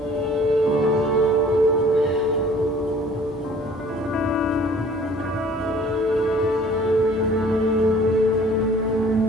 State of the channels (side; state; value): both; normal; correlation 0.52